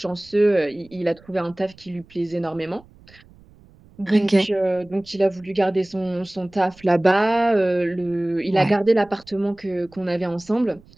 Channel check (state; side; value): noise; right; rumble, 26 dB below the sound